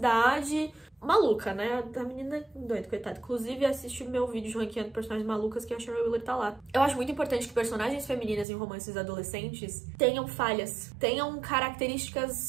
Maluca, né? A menina é doida, coitada. Inclusive, assiste o meu vídeo de ranqueando personagens malucas, que a Shara Wheeler tá lá. Eu acho muito importante que personagens femininas em romances adolescentes tenham falhas, tenham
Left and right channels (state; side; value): drops out; left; at 8.5 s